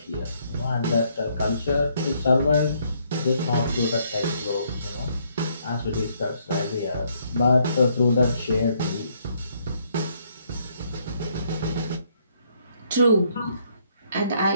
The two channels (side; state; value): both; inverted; correlation -0.70